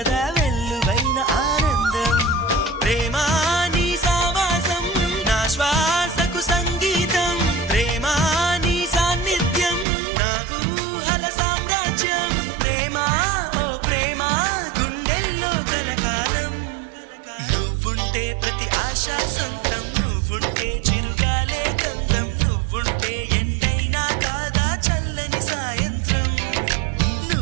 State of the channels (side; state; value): left; drops out; at 9.9 s